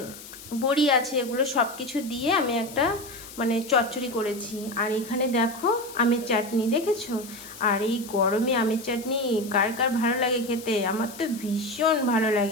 বড়ি আছে। এগুলো সব কিছু দিয়ে আমি একটা চচ্চড়ি করেছি। আর এখানে দেখো আমের চাটনি, দেখেছো? আর এই গরমে আমের চাটনি কার কার ভালো লাগে খেতে? আমার তো ভীষণ ভালো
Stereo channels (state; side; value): noise; left; hiss, 16 dB below the sound